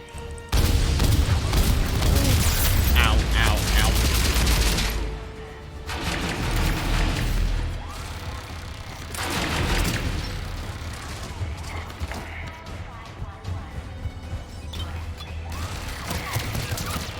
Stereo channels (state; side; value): identical; both; correlation 1.00